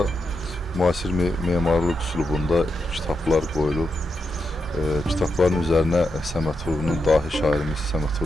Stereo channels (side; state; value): both; normal; correlation 0.85